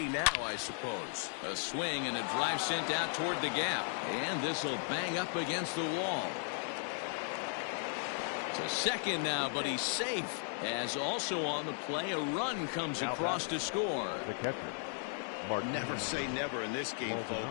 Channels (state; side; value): silent; right; 54 dB below the other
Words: now, I suppose. A swing and a drive sent out toward the gap. And this will bang up against the wall. To second now, but he's safe. As also on the play, a run comes across to score. The catcher. Never say never in this game,